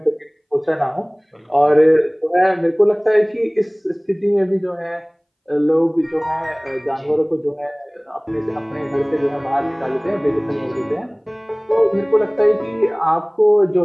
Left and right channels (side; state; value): both; identical; correlation 1.00